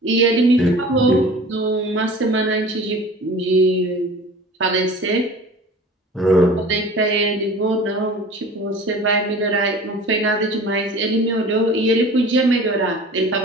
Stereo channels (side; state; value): both; normal; correlation 0.42